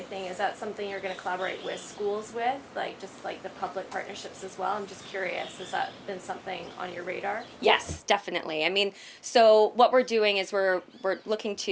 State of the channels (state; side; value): identical; both; correlation 1.00